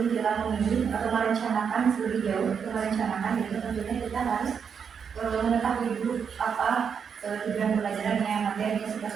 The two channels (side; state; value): left; quieter; 6.8 dB